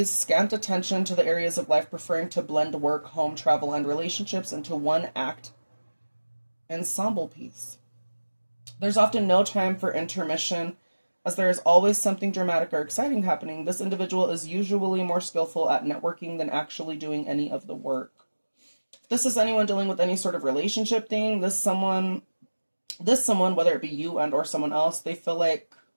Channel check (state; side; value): inverted; both; correlation -1.00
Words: scant attention to the areas of life, preferring to blend work, home, travel, and relationships into one act ensemble piece. There's often no time for intermission, as there is always something dramatic or exciting happening. This individual is usually more skillful at networking than actually doing any of the work. If this is anyone dealing with any sort of relationship thing, this someone, whether it be you and or someone else, they feel like,